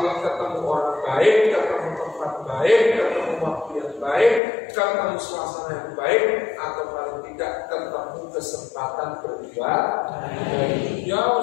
ketemu orang baik, ketemu tempat baik, ketemu waktu yang baik, ketemu suasana yang baik, atau paling tidak ketemu kesempatan berbuat. Ya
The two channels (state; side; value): drops out; right; at 4.4 s